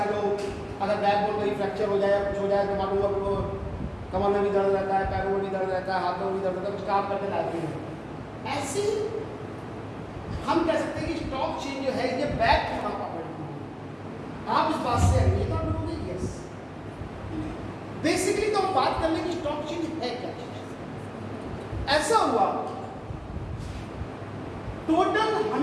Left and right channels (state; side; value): identical; both; correlation 1.00